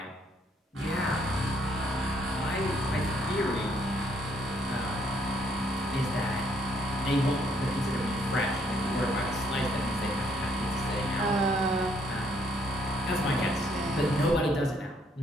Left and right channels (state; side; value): normal; both; correlation 0.69